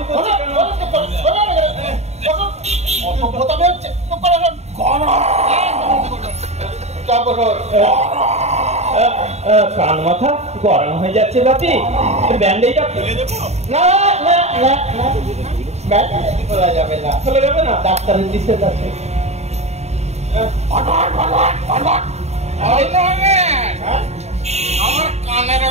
করছে কেন? কান মাথা গরম হয়ে যাচ্ছে বাপি, ব্যান্ডেজটা খুলে দেবো? না না না না, ব্যান্ডেজ খোলা যাবে না। খুলে যাবে না? ডাক্তারের নিষেধ আছে। আমার কানের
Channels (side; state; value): left; late; 0.32 ms